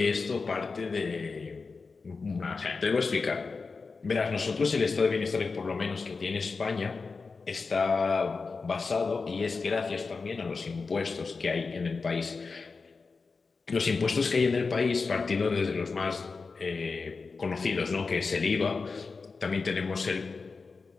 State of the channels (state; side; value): quieter; right; 4.4 dB